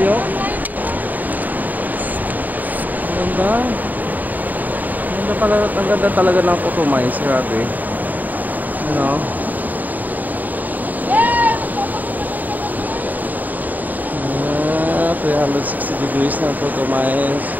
Ang ganda. Ang ganda talaga ng Cotomines, grabe. Ano? 360 degrees ng Cotomines.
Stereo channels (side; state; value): left; late; 0.083 ms